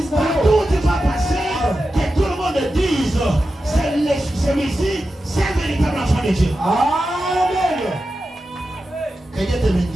Partout où tu vas passer, que tout le monde dise, celui-ci, c'est un véritable enfant de Dieu. Amen. Que Dieu te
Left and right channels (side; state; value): both; normal; correlation 0.91